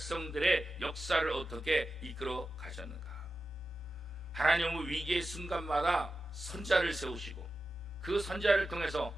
역사를 어떻게 이끌어 가셨는가. 하나님은 위기의 순간마다 선자를 세우시고 그 선자를 통해서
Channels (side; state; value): left; noise; rumble, 25 dB below the sound